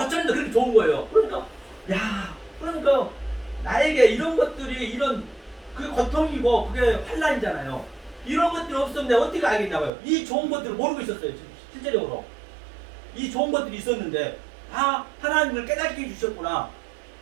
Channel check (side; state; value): left; drops out; at 9.9 s